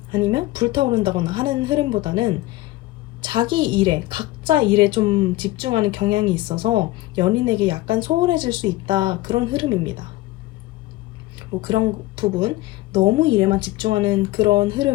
아니면 불타오른다거나 하는 흐름보다는 자기 일에, 각자 일에 좀 집중하는 경향이 있어서 연인에게 약간 소홀해질 수 있다, 그런 흐름입니다. 뭐 그런 부분, 너무 일에만 집중하는 그런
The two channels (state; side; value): quieter; right; 18.0 dB